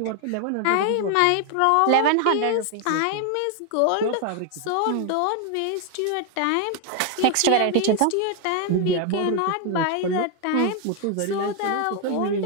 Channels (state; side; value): different; both; correlation 0.01